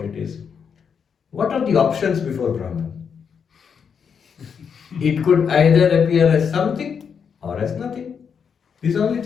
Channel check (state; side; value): quieter; right; 6.8 dB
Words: it is, what are the options before Brahman? It could either appear as something or as nothing. This is the only